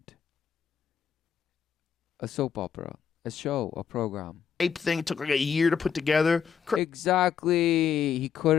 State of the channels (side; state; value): right; quieter; 7.5 dB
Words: A soap opera, a show, a program. Hype thing. It took like a year to put together. Exactly. He